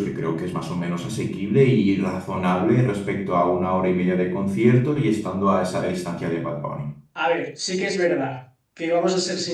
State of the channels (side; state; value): both; identical; correlation 1.00